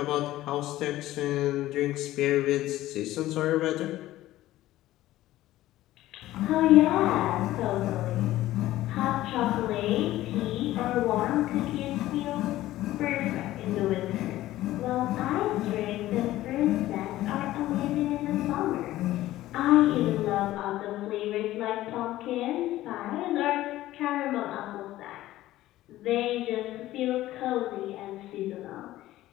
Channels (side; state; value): right; quieter; 15.4 dB